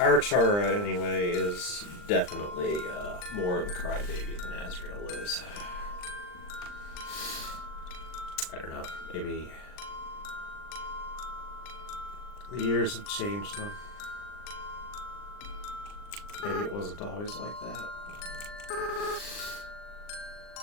Chara, anyway, is definitely more of a crybaby than Azrael is. I don't know, maybe the years have changed them. Maybe it wasn't always like that.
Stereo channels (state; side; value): late; right; 39 ms